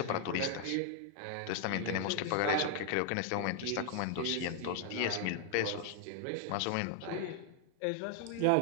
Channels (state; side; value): different; both; correlation 0.00